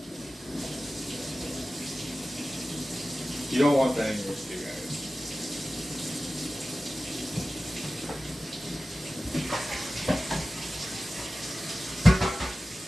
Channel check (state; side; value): normal; both; correlation 0.95